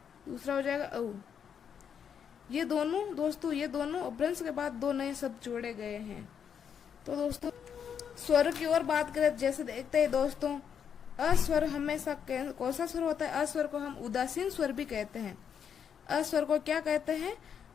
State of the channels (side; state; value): right; quieter; 7.8 dB